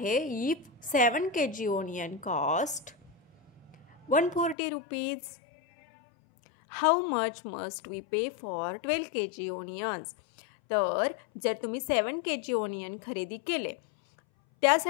if 7 kg onion cost 140 rupees, how much must we pay for 12 kg onions. तर जर तुम्ही 7 kg ओनियन खरेदी केले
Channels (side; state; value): right; drops out; at 4.5 s